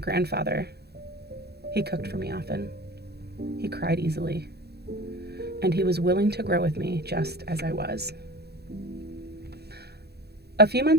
He cooked for me often. He cried easily. And he was willing to grow with me just as I was. A few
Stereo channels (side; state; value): left; late; 0.47 ms